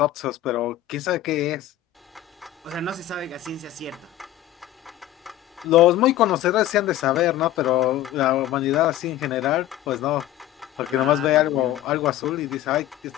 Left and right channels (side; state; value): right; quieter; 13.4 dB